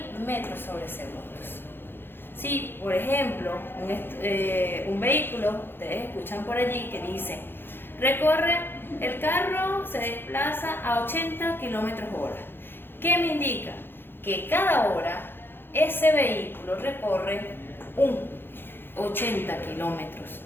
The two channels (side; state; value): right; late; 0.10 ms